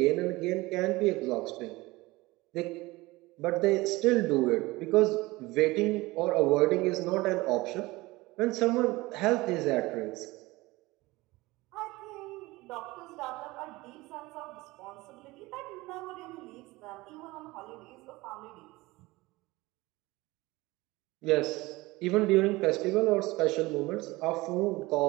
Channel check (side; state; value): left; quieter; 20.9 dB